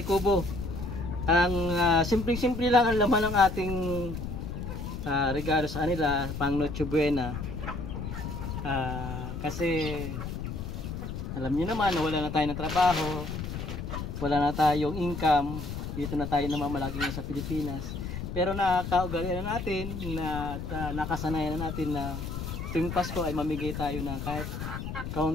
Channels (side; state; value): left; noise; rumble, 6 dB below the sound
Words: kubo. Ang simpleng-simple lang ang laman ng ating regalo sa kanila, pang Noche Buena. Kasi alam niyo naman na wala na tayo ng trabaho, wala na tayong income, dito na tayo namamalagi sa Pilipinas. Pero nakakaugalian na natin na nakasanayan na natin na tuwing Pasko ay mamigay tayo ng kahit